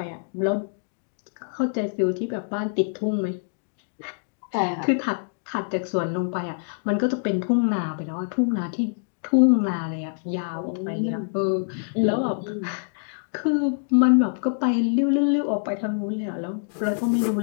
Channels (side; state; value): right; silent; digital silence